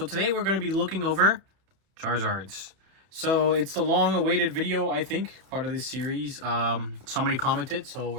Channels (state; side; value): late; left; 31 ms